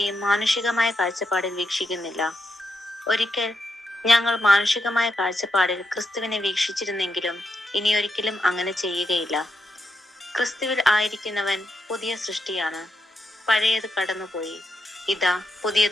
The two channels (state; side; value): normal; both; correlation 0.83